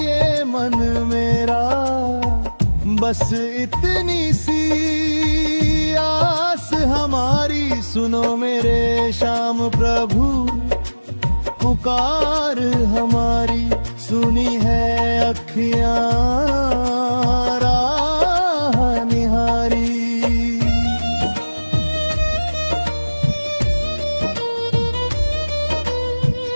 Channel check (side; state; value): both; inverted; correlation -1.00